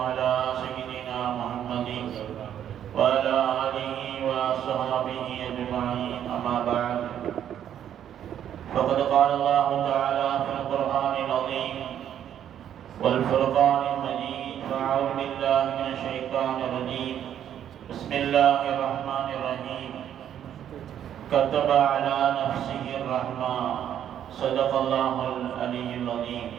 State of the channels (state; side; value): quieter; left; 10.0 dB